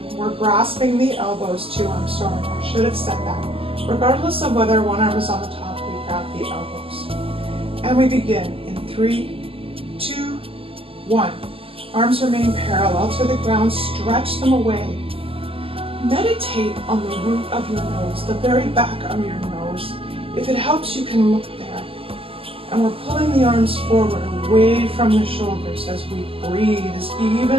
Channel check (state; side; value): late; left; 0.27 ms